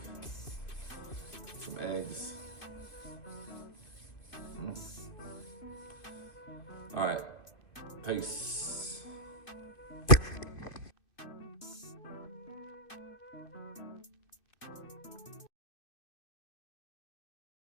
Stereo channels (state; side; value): late; right; 2.4 ms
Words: some eggs. All right, peace.